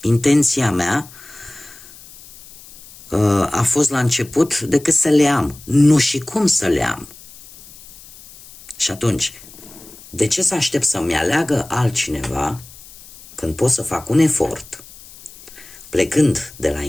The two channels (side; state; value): left; noise; hiss, 20 dB below the sound